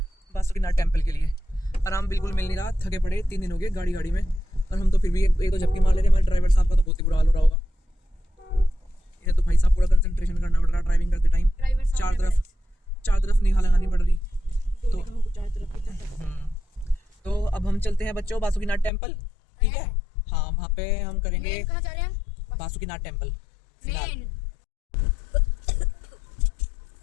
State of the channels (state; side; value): drops out; right; at 18.9 s